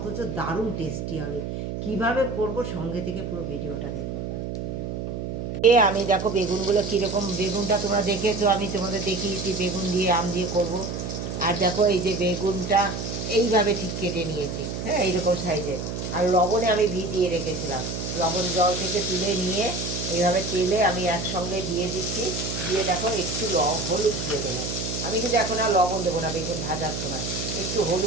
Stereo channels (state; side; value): noise; right; hum, 5 dB below the sound